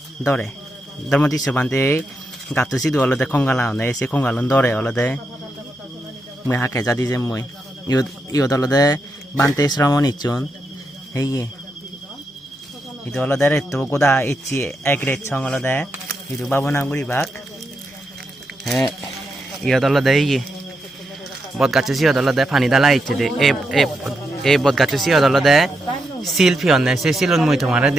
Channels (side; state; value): both; normal; correlation 0.84